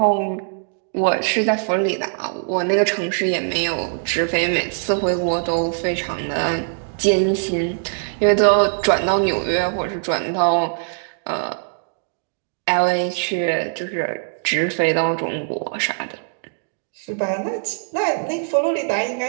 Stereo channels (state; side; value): silent; left; digital silence